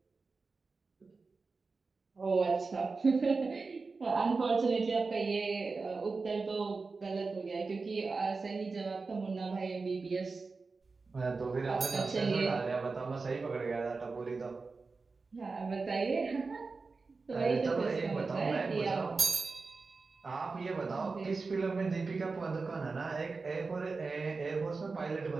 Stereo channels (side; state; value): left; quieter; 4.2 dB